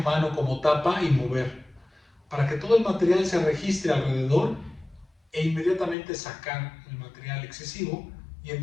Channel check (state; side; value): drops out; right; at 6.0 s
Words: como tapa y mover, para que todo el material se registre alrededor e inmediatamente sacar el material excesivo, y